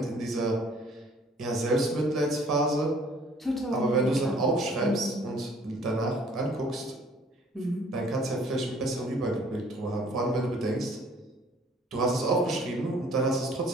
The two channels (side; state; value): both; normal; correlation 0.56